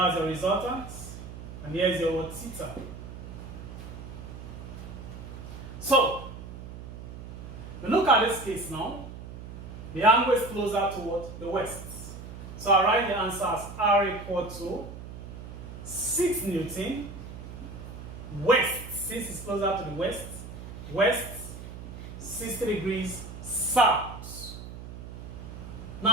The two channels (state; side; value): noise; right; hum, 11 dB below the sound